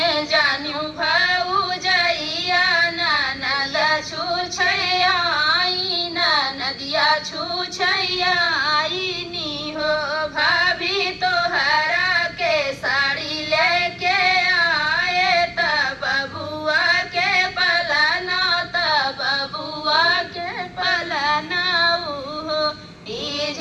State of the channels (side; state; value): both; identical; correlation 1.00